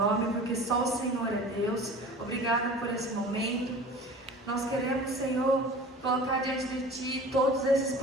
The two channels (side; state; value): both; normal; correlation 0.41